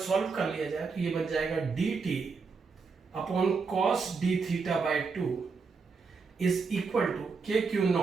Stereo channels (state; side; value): quieter; left; 4.8 dB